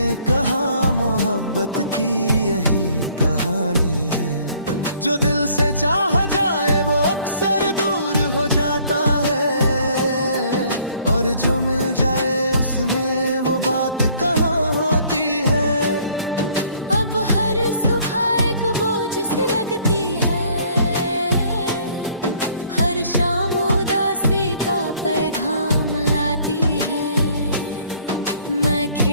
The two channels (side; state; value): both; inverted; correlation -0.60